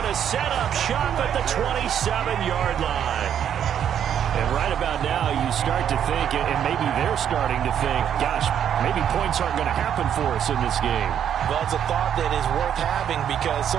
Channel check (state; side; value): quieter; left; 9.2 dB